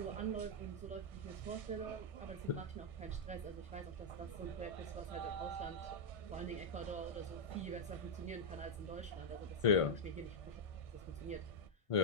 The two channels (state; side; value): late; right; 1.5 ms